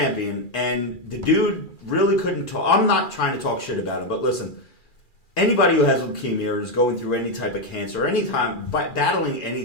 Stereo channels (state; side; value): late; right; 2.4 ms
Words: and the dude really couldn't talk. I'm not trying to talk shit about him, but listen, anybody who has leukemia or is going through any type of cancer, battling